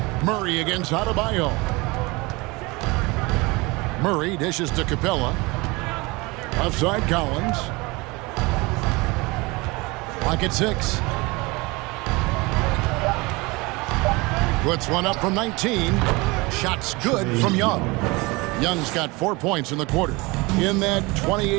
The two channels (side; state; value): left; quieter; 24.4 dB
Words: Murray against Adebayo. Murray dishes to Capella. Offside Collins. Clock at 6. Puts one up from 19. Shots good from Young. Young's got 4 points in the quarter. In that